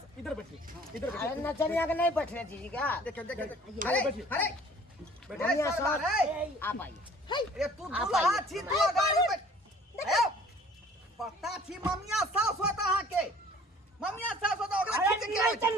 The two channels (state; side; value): normal; both; correlation 0.52